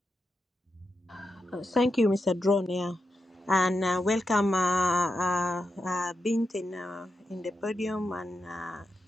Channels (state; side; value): normal; both; correlation 0.87